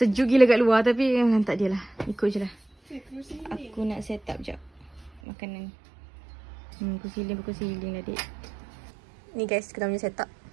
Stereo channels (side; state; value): left; drops out; at 5.2 s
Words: gila kat luar tapi tak dia lah. Ikut je lah. Aku nak set up jap makanan. Kursi healing lah dik. Ni guys, kita punya set up.